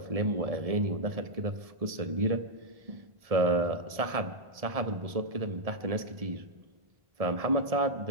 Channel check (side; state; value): left; late; 1.7 ms